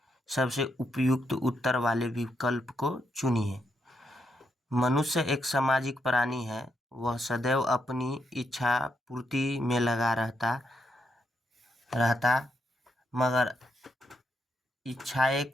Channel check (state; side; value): normal; both; correlation 0.80